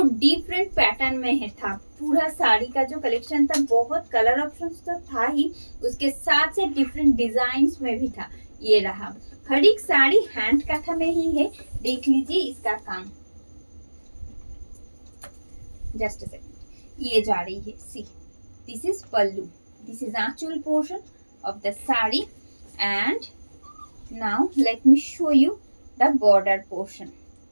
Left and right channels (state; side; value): inverted; both; correlation -1.00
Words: डिफरेंट पैटर्न में है था। पूरा साड़ी का जो कलेक्शन था बहुत कलर ऑप्शंस तो था ही, उसके साथ से डिफरेंट डिजाइन्स में भी था। ये रहा हर एक साड़ी हैंड काथा में ही है, देख लीजिए इसका काम। जस्ट अ सेकंड, ये जा रही है। See this is pallu, this is Aanchal portion of the sari and now let me show you the border portion